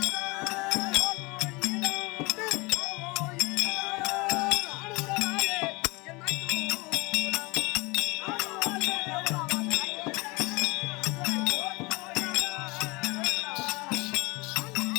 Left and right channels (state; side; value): quieter; right; 25.6 dB